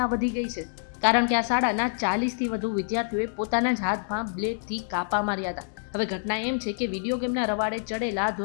વધી ગઈ છે. કારણ કે આ શાળાના 40થી વધુ વિદ્યાર્થીઓએ પોતાના જ હાથમાં બ્લેડથી કાપા માર્યા હતા. હવે ઘટના એમ છે કે વિડીયો ગેમના રવાડે ચડેલા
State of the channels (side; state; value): right; silent; digital silence